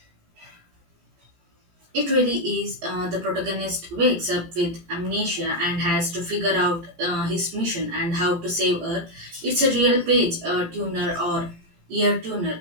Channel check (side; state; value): left; late; 18 ms